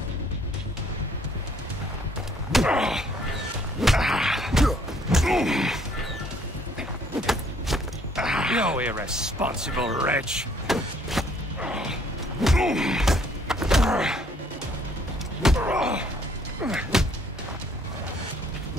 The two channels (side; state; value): both; normal; correlation 0.63